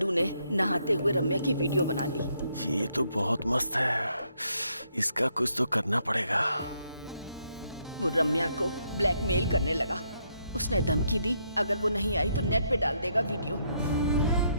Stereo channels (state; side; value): inverted; both; correlation -0.75